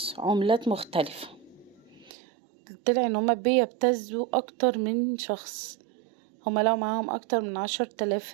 عملات مختلفة. طلع ان هما بيبتزوا اكتر من شخص. هما لقوا معاهم اكتر من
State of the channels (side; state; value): left; drops out; at 2.1 s